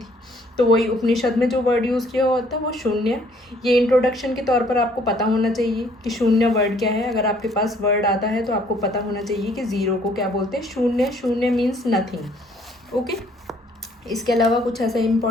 तो वही उपनिषद में जो वर्ड यूज़ किया होता है वो शून्य. ये इंट्रोडक्शन के तौर पर आपको पता होना चाहिए कि शून्य वर्ड क्या है. अगर आपके पास वर्ड आता है तो आपको पता होना चाहिए कि ज़ीरो को क्या बोलते हैं, शून्य. शून्य मीन्स नथिंग. ओके, इसके अलावा कुछ ऐसा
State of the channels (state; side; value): normal; both; correlation 0.62